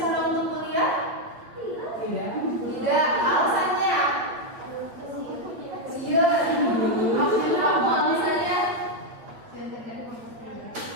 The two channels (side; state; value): left; late; 8.7 ms